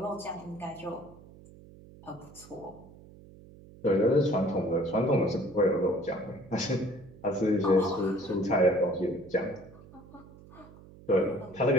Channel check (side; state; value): right; noise; hum, 21 dB below the sound